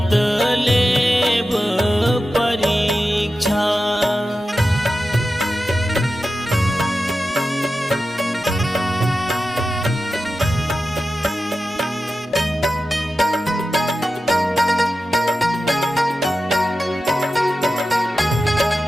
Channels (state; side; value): normal; both; correlation 0.92